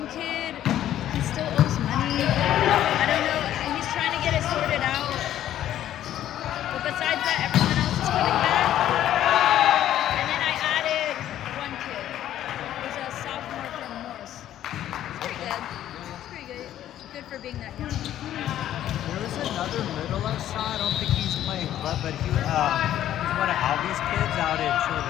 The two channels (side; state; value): right; quieter; 12.0 dB